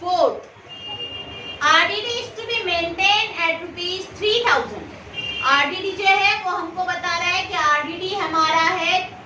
4। RDD is to be maintain at ₹3000। RDD जो है वो हमको बता रहा है कि आरडीडी हमारा है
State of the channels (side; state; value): both; identical; correlation 1.00